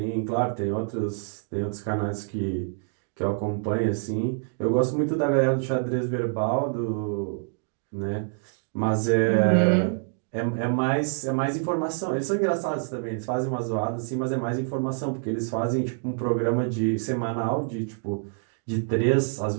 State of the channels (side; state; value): left; silent; 58 dB below the other